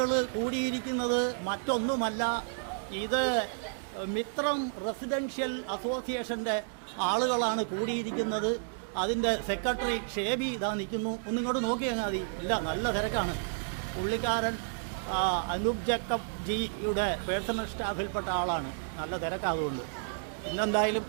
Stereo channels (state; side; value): silent; left; digital silence